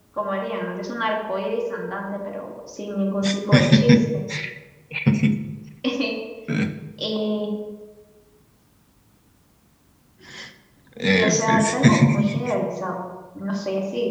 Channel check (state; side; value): identical; both; correlation 1.00